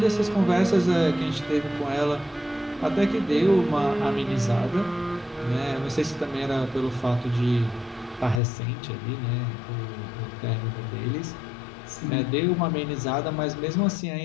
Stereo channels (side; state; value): right; drops out; at 8.4 s